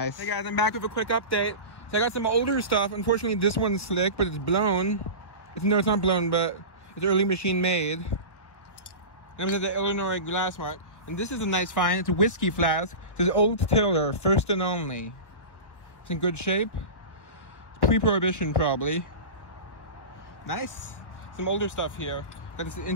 Hey guys, I'm back with a quick update. So I got some older stuff. Unfortunately, this one's slick, but it's blown. No, it's not blown, but it's early machine made. I'm in the Illinois glass one. And this is a nice find. It's a whiskey flask. It says Old Tiller, first and only. It's in good shape. It's Pre-Prohibition, probably. Nice. Some older stuff here. Got this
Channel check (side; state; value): right; late; 1.3 ms